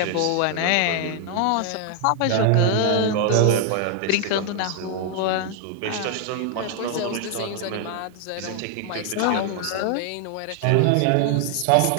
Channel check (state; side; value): different; both; correlation 0.00